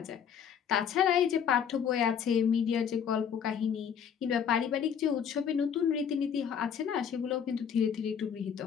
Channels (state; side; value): quieter; right; 7.9 dB